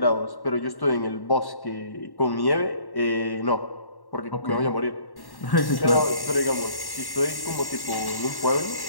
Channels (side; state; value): right; late; 1.1 ms